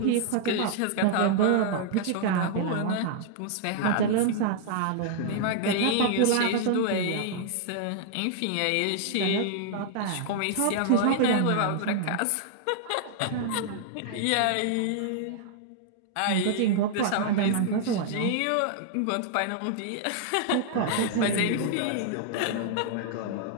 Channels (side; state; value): both; different; correlation -0.01